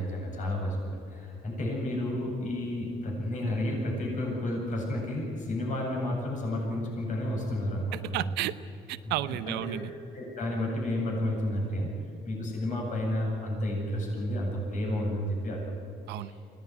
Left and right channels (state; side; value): normal; both; correlation 0.67